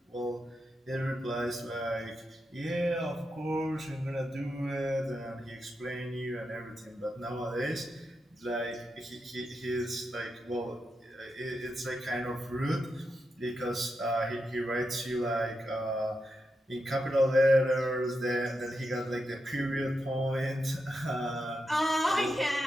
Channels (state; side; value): normal; both; correlation 0.86